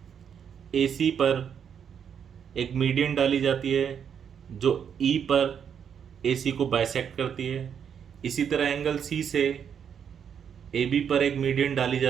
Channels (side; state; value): left; quieter; 7.8 dB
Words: AC पर एक मीडियन डाली जाती है जो E पर AC को बाइसेक्ट करती है। इसी तरह एंगल C से AB पर एक मीडियन डाली